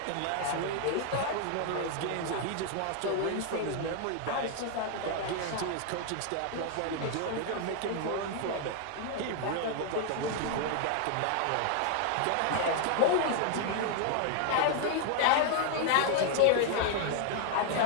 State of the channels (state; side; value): different; both; correlation 0.00